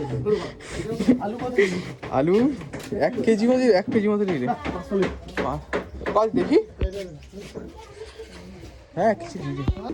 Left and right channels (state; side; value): identical; both; correlation 1.00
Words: আলু 1 কেজি মতো, 1 কেজি মতো নিলে দেখি। হ্যাঁ, কিছু দিদি,